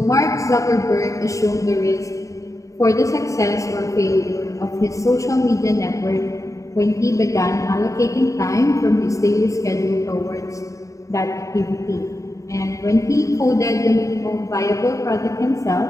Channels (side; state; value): right; late; 0.16 ms